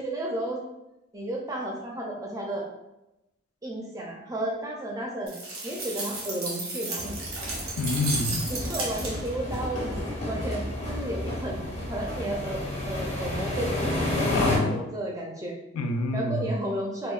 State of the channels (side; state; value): both; normal; correlation 0.47